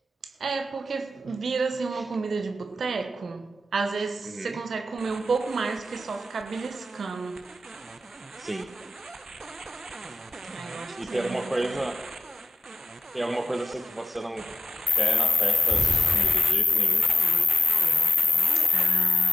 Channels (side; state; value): both; normal; correlation 0.91